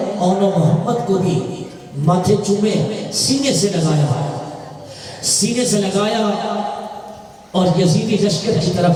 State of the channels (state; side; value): identical; both; correlation 1.00